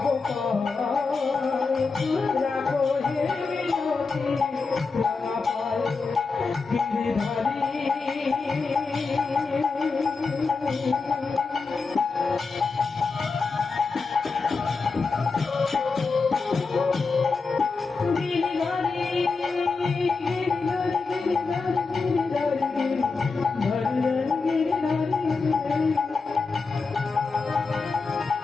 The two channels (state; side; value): quieter; right; 4.4 dB